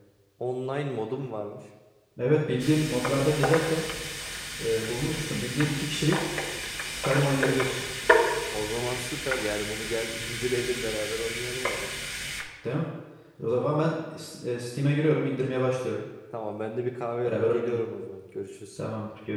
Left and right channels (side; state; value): both; identical; correlation 1.00